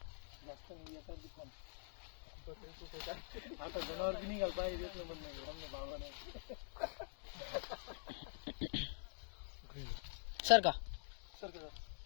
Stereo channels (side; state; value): right; silent; digital silence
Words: आता जनावर बी निघाल पाहिजे देत नाही म्हणणं भावा नाही सर का सर का